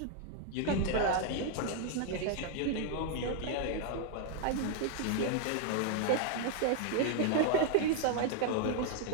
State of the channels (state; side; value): different; both; correlation 0.00